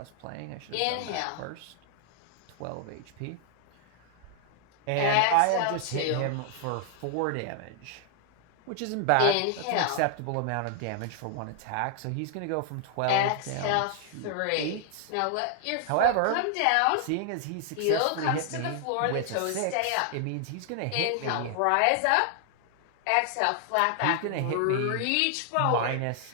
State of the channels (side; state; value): both; different; correlation 0.00